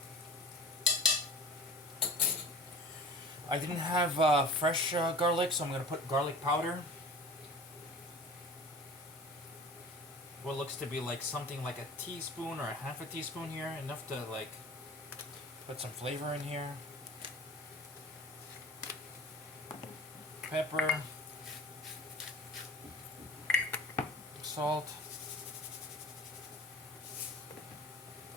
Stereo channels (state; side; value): normal; both; correlation 0.40